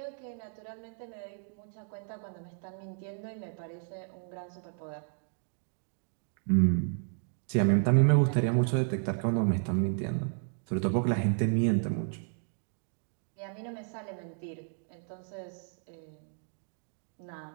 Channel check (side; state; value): left; silent; 56 dB below the other